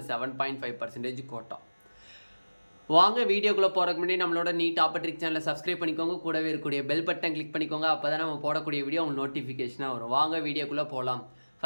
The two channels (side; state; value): both; inverted; correlation -1.00